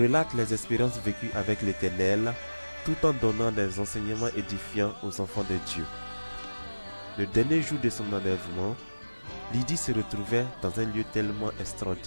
les expériences vécues avec l'Éternel tout en donnant des enseignements édifiants aux enfants de Dieu. Le dernier jour de son enlèvement, Lydie se retrouvait dans un lieu tellement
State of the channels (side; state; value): both; inverted; correlation -1.00